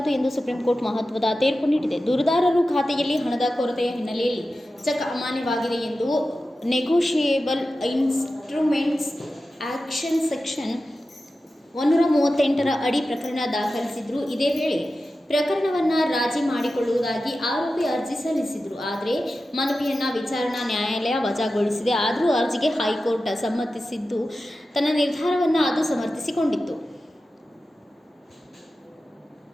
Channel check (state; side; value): normal; both; correlation 0.93